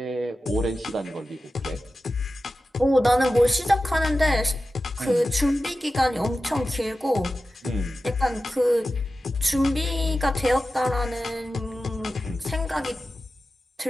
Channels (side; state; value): both; normal; correlation 0.94